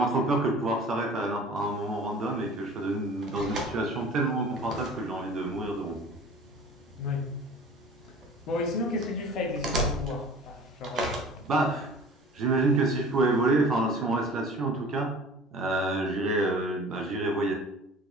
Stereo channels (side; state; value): both; normal; correlation 0.43